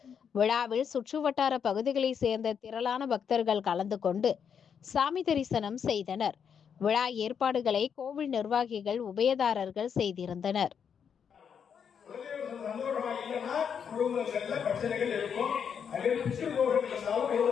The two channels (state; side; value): quieter; right; 7.4 dB